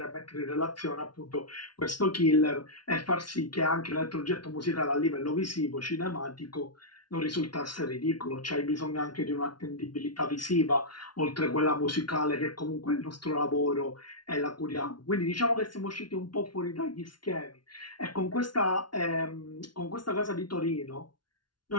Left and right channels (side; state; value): right; late; 0.71 ms